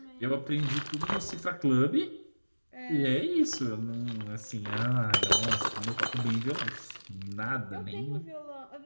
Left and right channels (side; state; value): both; inverted; correlation -1.00